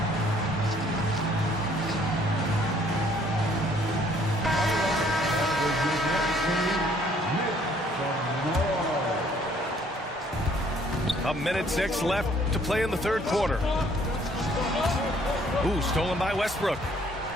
A minute 6 left to play in the third quarter. Ooh, stolen by Westbrook.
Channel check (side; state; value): both; normal; correlation 0.62